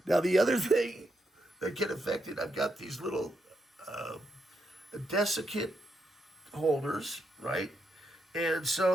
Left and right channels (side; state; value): both; normal; correlation 0.81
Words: Now, the other thing that can affect it, I've got these little desiccant holders, right? And